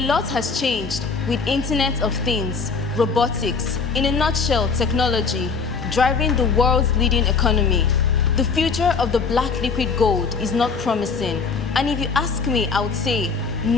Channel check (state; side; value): quieter; right; 5.0 dB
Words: lot has changed with Internet of Things, robotics, in a nutshell, technology, driving the world's leading economy. The future of the black liquid gold is not promising. And if you ask me, I would say,